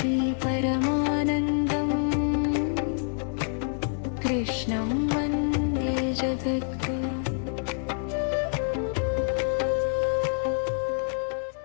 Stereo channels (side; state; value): right; silent; digital silence